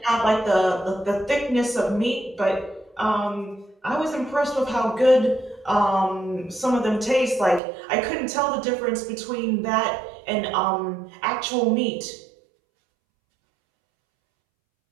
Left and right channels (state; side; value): drops out; left; at 7.6 s